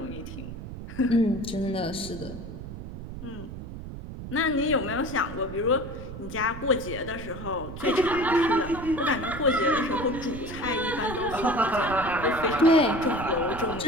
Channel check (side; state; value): right; noise; rumble, 10 dB below the sound